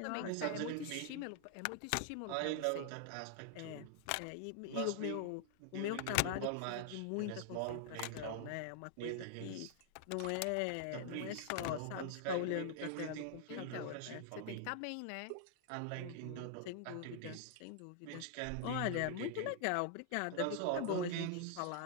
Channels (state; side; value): different; both; correlation 0.00